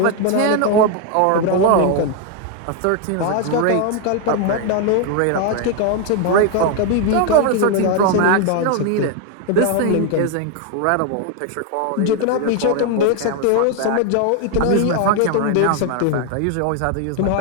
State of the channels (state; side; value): different; both; correlation 0.01